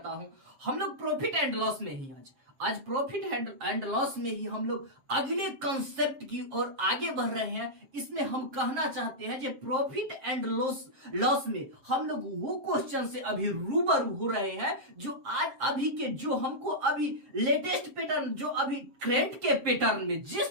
हूं। हम लोग प्रॉफिट एंड लॉस में ही आज प्रॉफिट एंड लॉस में ही हम लोग अगले कंसेप्ट की ओर आगे बढ़ रहे हैं। इसमें हम कहना चाहते हैं कि प्रॉफिट एंड लॉस में हम लोग वो क्वेश्चन से अभी रूबरू हो रहे हैं जो आज अभी के जो हमको अभी लेटेस्ट पैटर्न, जो अभी करंट के पैटर्न में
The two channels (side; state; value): left; late; 7.4 ms